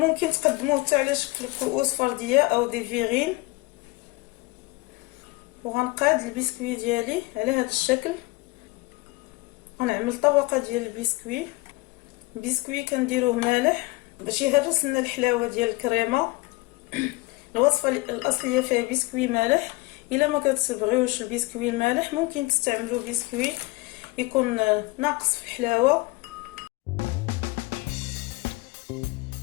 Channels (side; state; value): right; quieter; 23.0 dB